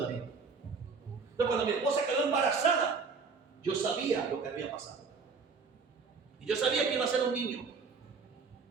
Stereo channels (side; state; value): left; quieter; 5.0 dB